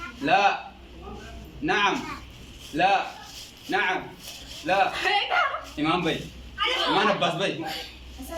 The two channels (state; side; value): identical; both; correlation 1.00